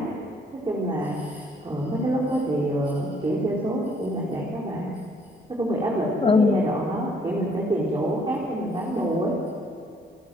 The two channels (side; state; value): both; normal; correlation 0.65